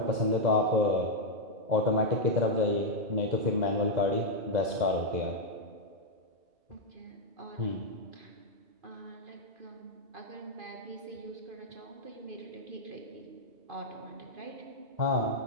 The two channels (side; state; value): left; late; 2.0 ms